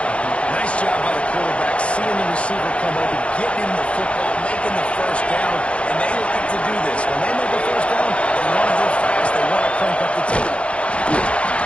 Nice job by the quarterback, seeing the receiver come open, getting him the football, making the first down, and they like to do this. When they make a first down, they want to go fast, they want to crank up the tempo.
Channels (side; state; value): right; late; 0.061 ms